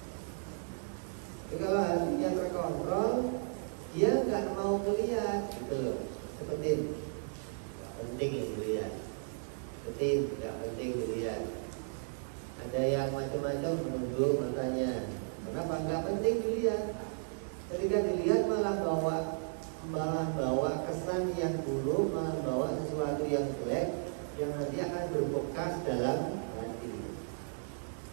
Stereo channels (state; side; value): silent; left; 55 dB below the other